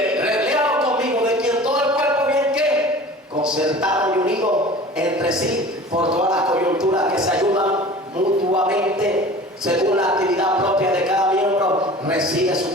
léalo conmigo, de quien todo el cuerpo bien ¿qué? Concertado y unido entre sí por todas las coyunturas, que se ayudan mutuamente según la actividad propia de cada miembro, recibe su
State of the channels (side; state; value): both; normal; correlation 0.41